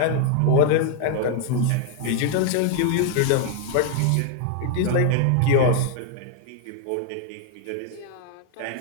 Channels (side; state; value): both; different; correlation 0.00